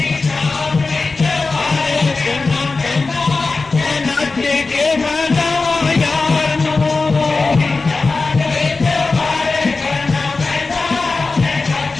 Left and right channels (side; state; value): right; quieter; 3.9 dB